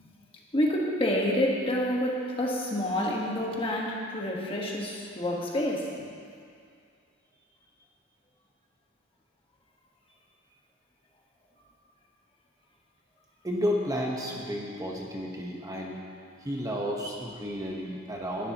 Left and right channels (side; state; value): both; normal; correlation 0.56